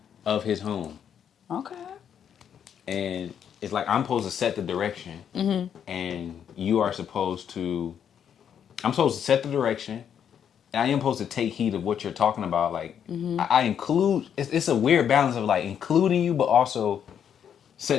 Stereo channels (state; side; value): quieter; right; 8.5 dB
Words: of his home. Okay. And it's like I'm supposed to set the direction, and you are supposed to. I'm supposed to set the direction, and I am supposed to take heed of what you're talking about. Like I include. It's a weird balance of like including you, but also